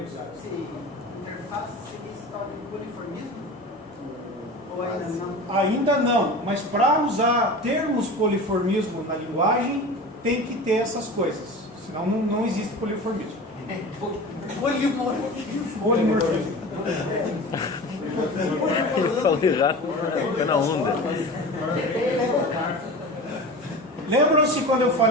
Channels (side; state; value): both; normal; correlation 0.33